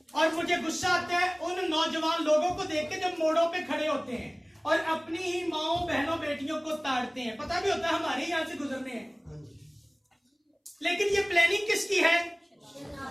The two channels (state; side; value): identical; both; correlation 1.00